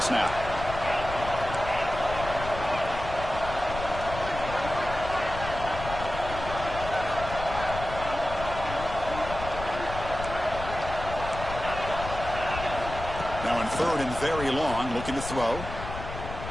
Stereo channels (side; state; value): left; noise; rumble, 9 dB below the sound